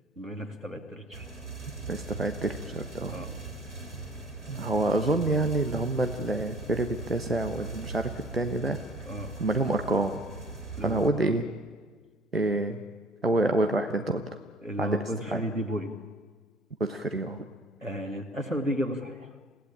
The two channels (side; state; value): both; normal; correlation 0.51